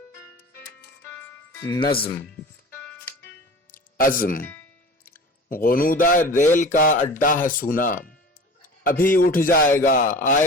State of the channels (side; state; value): both; normal; correlation 0.38